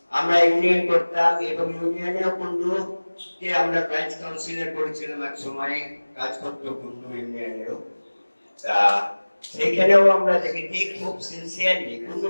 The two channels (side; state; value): both; inverted; correlation -1.00